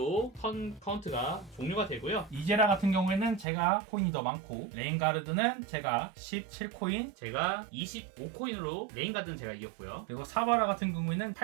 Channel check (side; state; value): left; drops out; at 3.5 s